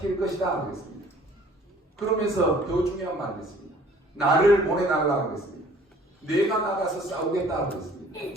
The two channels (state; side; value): normal; both; correlation 0.54